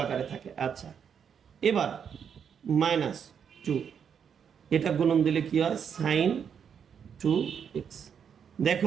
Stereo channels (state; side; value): quieter; left; 7.5 dB